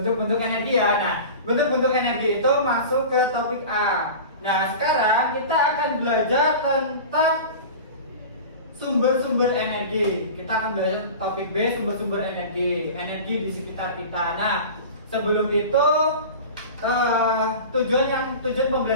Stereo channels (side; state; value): both; inverted; correlation -0.34